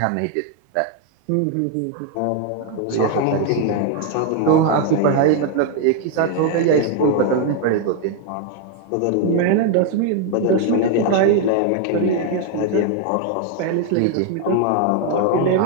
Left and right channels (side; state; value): both; different; correlation 0.01